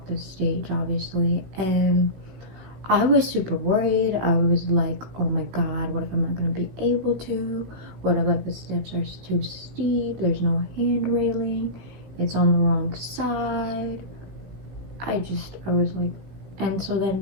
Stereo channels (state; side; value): late; left; 16 ms